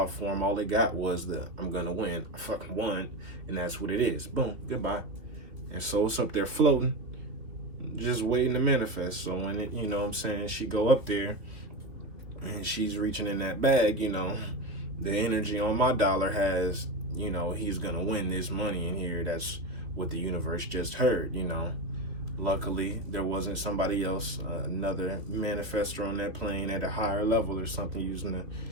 form, all it got was the I'm gonna win. I fucking won, and that's what it is. Boom, goodbye. And so it's up there floating, just waiting to manifest. So when it, she go up there and she's reaching in that bag, the energy on my dollar has, he's gonna win this money in here. That's what the universe just heard, Luckily, there wasn't somebody else, another manifestor on that plane at a higher level or something using a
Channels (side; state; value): left; late; 2.8 ms